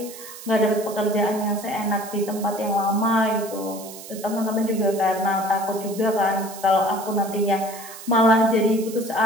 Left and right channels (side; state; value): right; noise; hiss, 14 dB below the sound